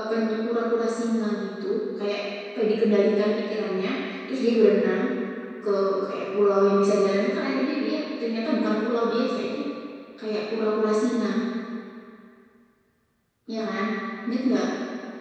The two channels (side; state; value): both; identical; correlation 1.00